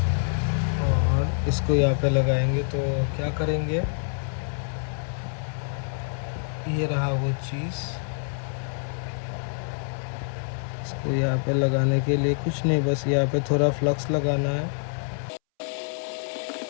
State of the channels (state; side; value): silent; right; 61 dB below the other